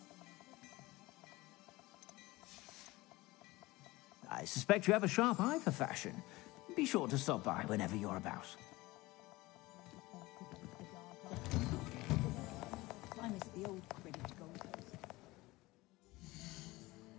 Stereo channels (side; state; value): right; quieter; 20.5 dB